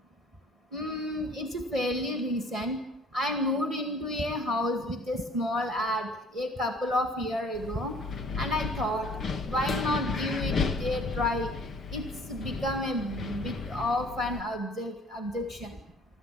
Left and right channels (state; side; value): normal; both; correlation 0.52